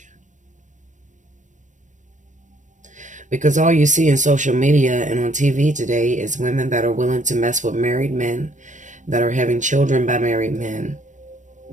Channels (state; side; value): late; left; 0.36 ms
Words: Because all you see in social media and on TV today is women that are willing to mess with married men, that are having children by married men,